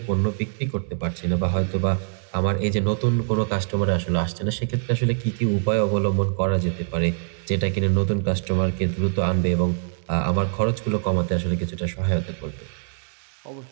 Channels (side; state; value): left; silent; digital silence